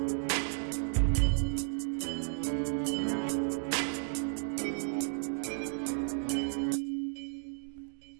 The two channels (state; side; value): silent; left; digital silence